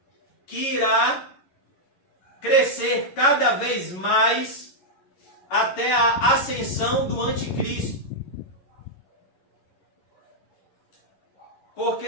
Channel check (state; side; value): late; right; 11 ms